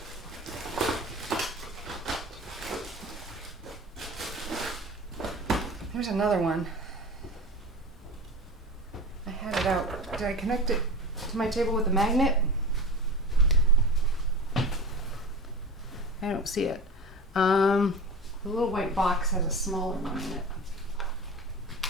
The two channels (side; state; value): both; normal; correlation 0.31